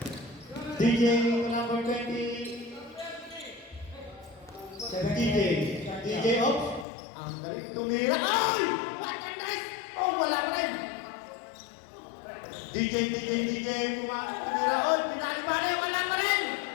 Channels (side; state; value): right; drops out; at 6.9 s